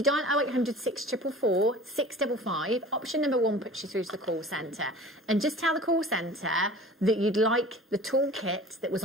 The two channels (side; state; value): both; normal; correlation 0.42